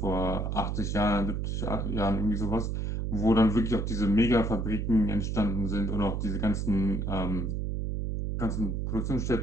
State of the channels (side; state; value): right; noise; hum, 1 dB below the sound